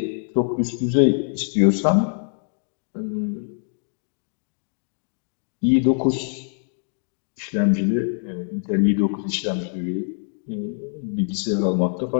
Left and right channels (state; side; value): silent; right; 63 dB below the other